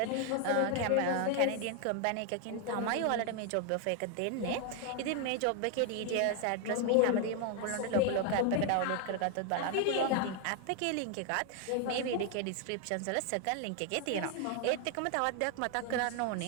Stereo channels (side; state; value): both; different; correlation 0.01